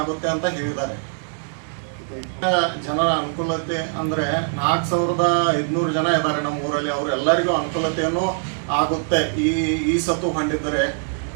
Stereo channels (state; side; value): silent; left; 64 dB below the other